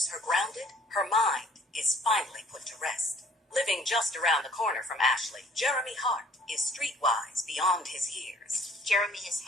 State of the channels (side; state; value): both; normal; correlation 0.57